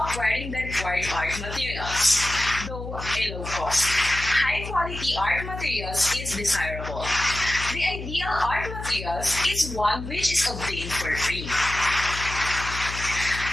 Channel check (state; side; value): noise; left; hum, 8 dB below the sound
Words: the required art materials, though a low cost. High quality art materials is desirable. The ideal art materials is one which is obtained for free.